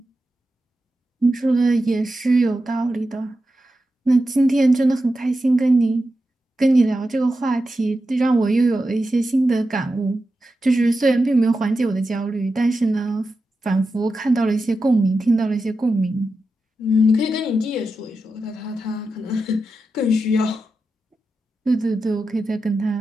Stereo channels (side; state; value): both; normal; correlation 0.90